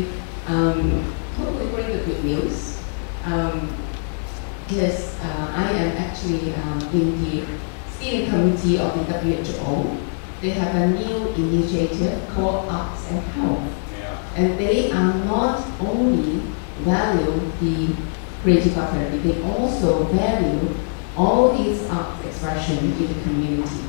totally bring the good news. Because I am actually in the steering committee of the WHO. They have a new initiative called Arts and Health. And they are not only value the creative art therapy, they also value all these art expression in the community,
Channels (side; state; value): right; silent; digital silence